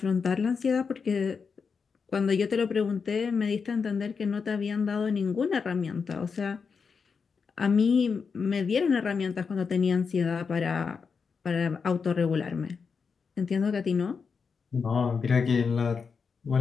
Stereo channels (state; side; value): quieter; right; 5.6 dB